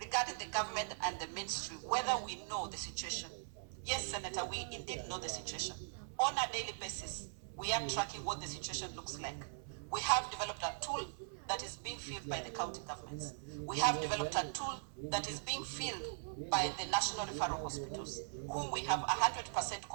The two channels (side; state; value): left; silent; 51 dB below the other